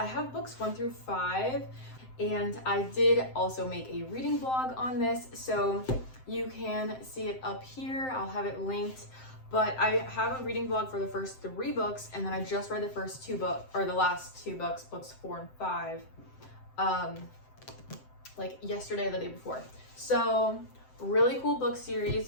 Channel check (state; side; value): late; right; 7.7 ms